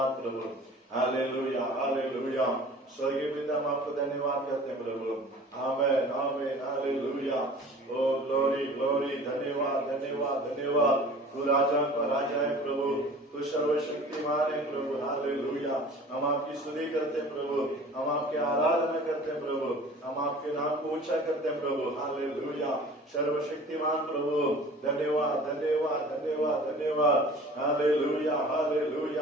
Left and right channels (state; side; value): normal; both; correlation 0.44